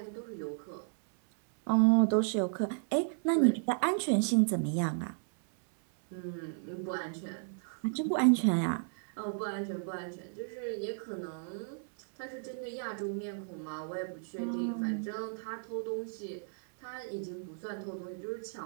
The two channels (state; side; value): silent; left; 55 dB below the other